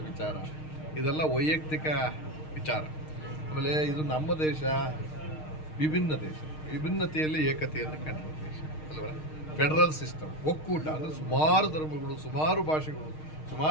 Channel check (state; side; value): late; right; 6.5 ms